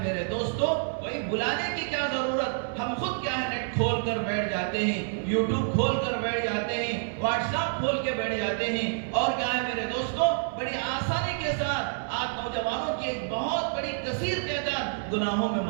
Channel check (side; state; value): left; silent; digital silence